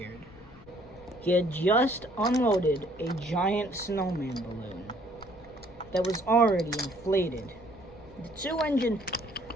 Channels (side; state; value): left; noise; rumble, 22 dB below the sound